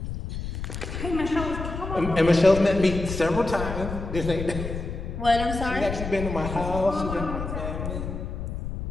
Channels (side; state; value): left; noise; rumble, 6 dB below the sound